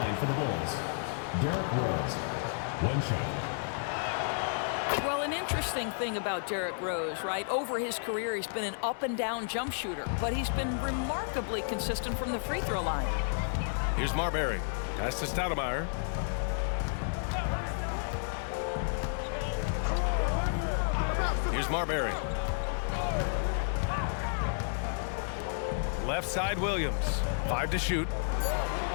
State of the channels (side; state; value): right; silent; digital silence